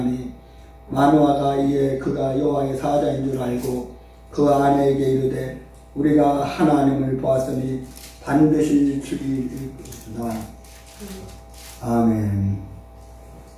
마노아가 이에 그가 여호와의 사자인 줄 알고 그 아내에게 이르되 우리가 하나님을 보았으니 반드시 죽이리이다. 아멘.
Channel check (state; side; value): identical; both; correlation 1.00